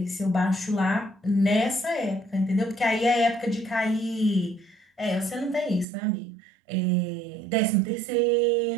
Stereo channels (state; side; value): drops out; left; at 5.9 s